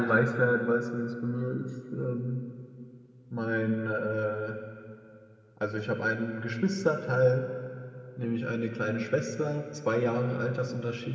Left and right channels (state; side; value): identical; both; correlation 1.00